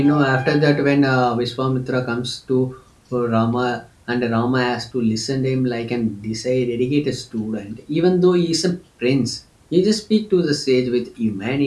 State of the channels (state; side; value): identical; both; correlation 1.00